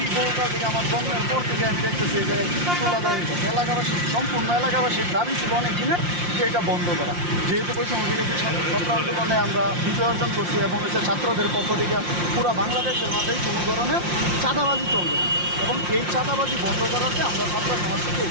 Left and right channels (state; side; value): late; left; 5.7 ms